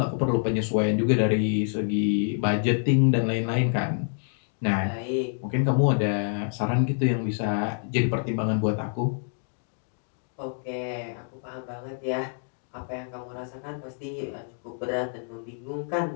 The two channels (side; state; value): right; silent; digital silence